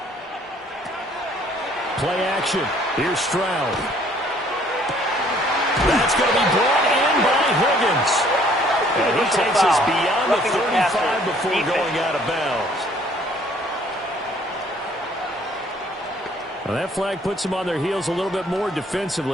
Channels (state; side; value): normal; both; correlation 0.60